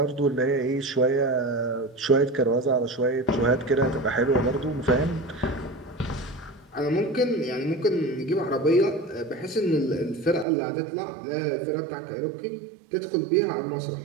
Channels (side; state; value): left; drops out; at 10.5 s